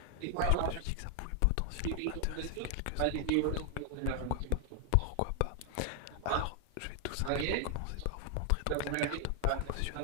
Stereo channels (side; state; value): both; different; correlation 0.00